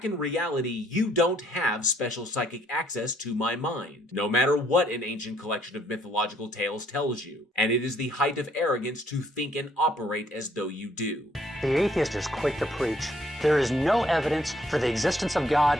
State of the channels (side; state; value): both; normal; correlation 0.66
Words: in reality, you don't have special psychic access to my mind, no matter what an ancient collection of mythological tales tells you. And it is the height of arrogance to think and operate as though you do. The atheist is quick to preach, there is no evidence for the existence of God,